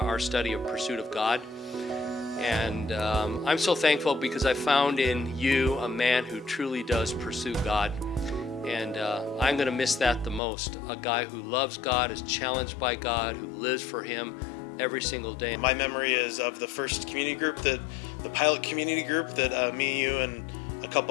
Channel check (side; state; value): right; drops out; at 10.4 s